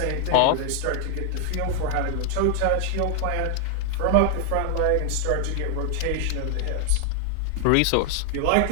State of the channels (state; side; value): different; both; correlation 0.00